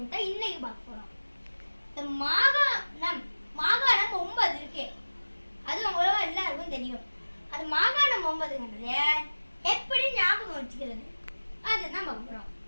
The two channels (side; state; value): both; inverted; correlation -1.00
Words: தான் இன்னைக்கு பார்க்க போறோம். இந்த மாகாணம் 9 இருக்கு. அது உங்களுக்கு எல்லாருக்கும் தெரியும். அது மாகாணம் 9ங்கிறது எப்படி ஞாபகம் வச்சுக்கிறது அதுதான் பார்க்க போறோம்.